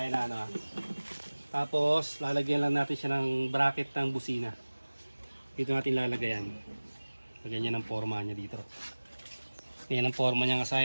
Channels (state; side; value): inverted; both; correlation -1.00